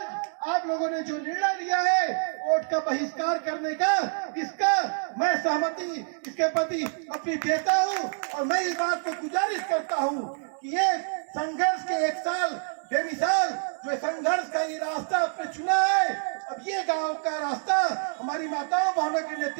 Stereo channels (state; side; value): silent; left; digital silence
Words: आप लोगों ने जो निर्णय लिया है वोट का बहिष्कार करने का, इसका मैं सहमति इसके प्रति अपनी देता हूँ। और मैं इस बात को गुजारिश करता हूँ कि ये संघर्ष के 1 साल बेमिसाल जो संघर्ष का ये रास्ता आपने चुना है, अब ये गांव का रास्ता हमारी माताओं बहनों के